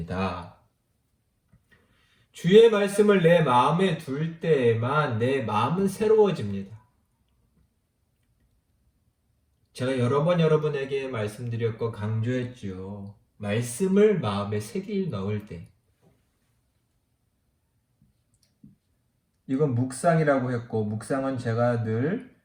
주의 말씀을 내 마음에 둘 때에만 내 마음은 새로워집니다. 제가 여러 번 여러분에게 말씀드렸고 강조했죠. 말씀을 마음에 새길 넣을 때. 이건 묵상이라고 했고, 묵상은 제가 늘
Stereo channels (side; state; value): both; identical; correlation 1.00